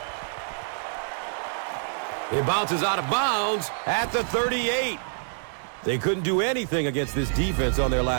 It bounces out of bounds at the 38. They couldn't do anything against this defense on their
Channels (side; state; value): left; silent; digital silence